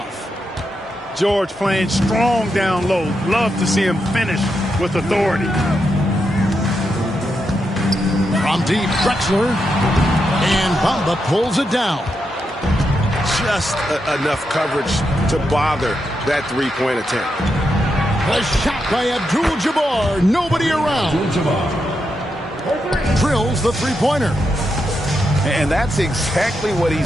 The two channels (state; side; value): normal; both; correlation 0.84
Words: George playing strong down low. Love to see him finish with authority. From deep, Drexler. And Bamba pulls it down. Just enough coverage to bother that three-point attempt. A shot by Abdul-Jabbar. Nobody around. Drills the three-pointer. And that's exactly what